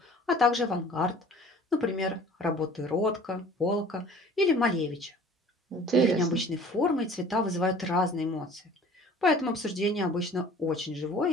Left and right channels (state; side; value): normal; both; correlation 0.48